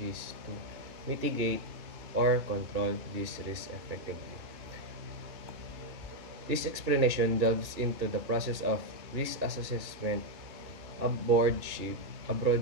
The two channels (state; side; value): late; left; 2.7 ms